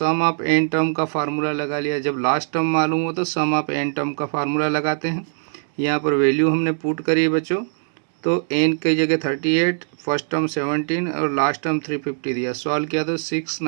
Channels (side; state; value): left; silent; digital silence